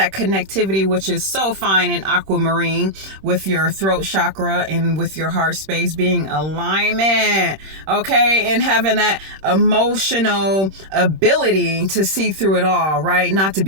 connectivity, which is so fine in aquamarine with your throat chakra and with your heart space being alignment, okay, and having that emotional ability to see through it all, right? Not to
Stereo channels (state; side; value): late; left; 26 ms